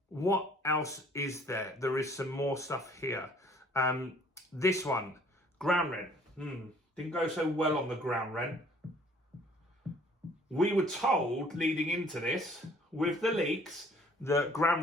what else is there? There is some more stuff here. This one, ground rent. Didn't go so well on the ground rent. We were told leading into this, with the leaks, that ground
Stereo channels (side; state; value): both; normal; correlation 0.57